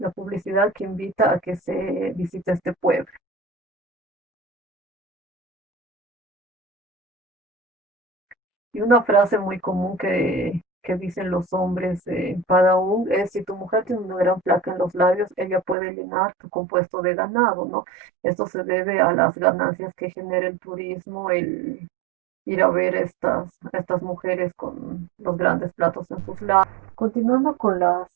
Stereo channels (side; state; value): left; drops out; at 15.8 s